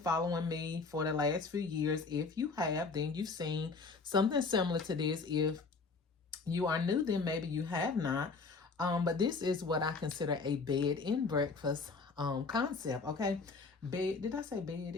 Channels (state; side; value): quieter; right; 4.3 dB